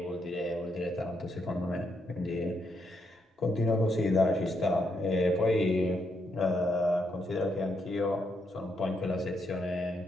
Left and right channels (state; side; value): normal; both; correlation 0.78